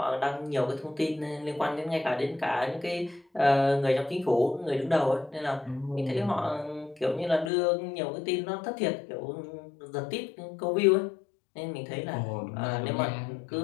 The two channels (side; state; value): right; drops out; at 7.5 s